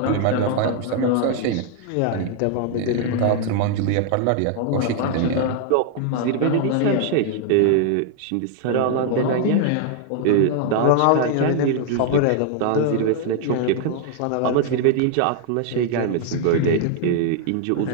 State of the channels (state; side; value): different; both; correlation 0.00